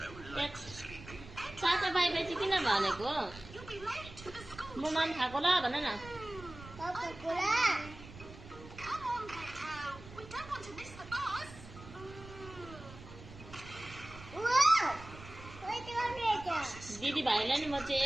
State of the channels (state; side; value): noise; right; rumble, 16 dB below the sound